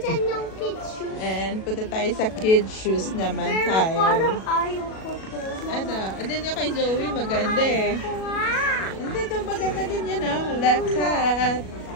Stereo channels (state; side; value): late; right; 37 ms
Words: yung kids shoes. And punta tayo sa kids shoes naman Pero tayo. parang ayaw ko to. Ano? Ano yung kay Zoe? Maganda eh. Hindi, ito maganda din yan ah. Lakat.